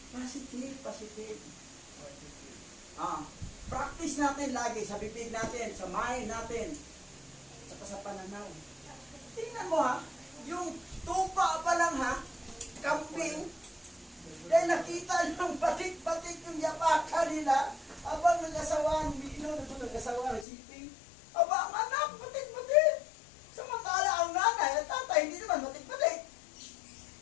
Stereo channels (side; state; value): right; drops out; at 20.5 s